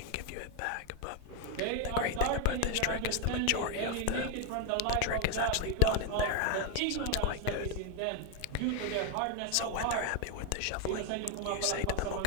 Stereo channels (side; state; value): both; different; correlation 0.01